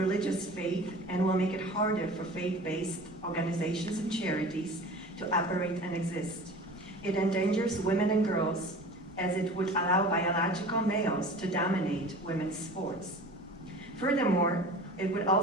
faith and will make it harder for faith-based organizations and charities to operate and exist. It endangers women and girls as it would allow biological males to dominate women's sports. Furthermore, it would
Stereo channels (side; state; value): right; noise; rumble, 27 dB below the sound